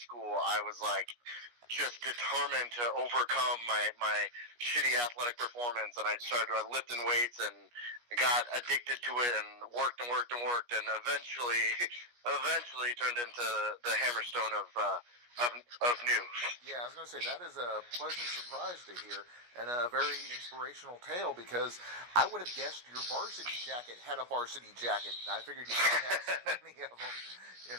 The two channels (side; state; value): left; late; 17 ms